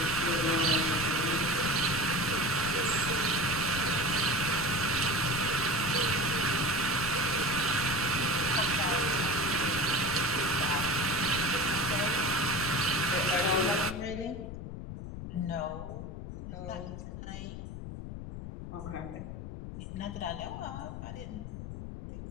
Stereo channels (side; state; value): left; noise; rumble, 8 dB below the sound